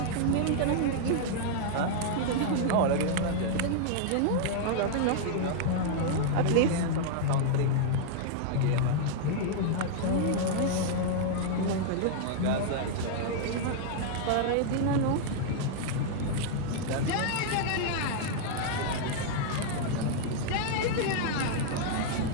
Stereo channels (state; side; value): different; both; correlation -0.01